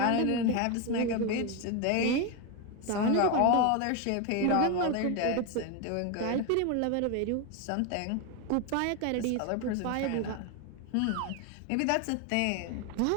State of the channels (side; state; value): both; different; correlation 0.02